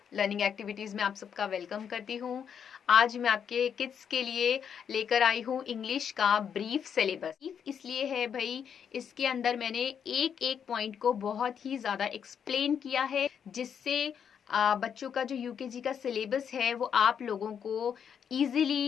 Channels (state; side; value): quieter; right; 7.8 dB